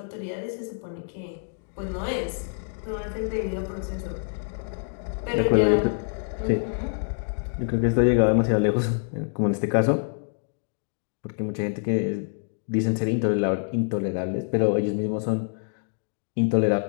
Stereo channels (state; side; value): silent; right; digital silence